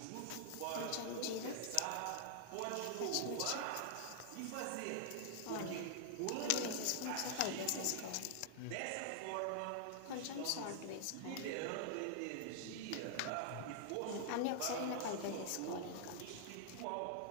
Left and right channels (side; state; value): both; different; correlation 0.00